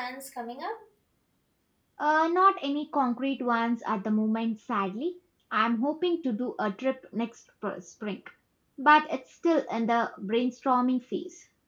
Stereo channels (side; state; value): both; identical; correlation 1.00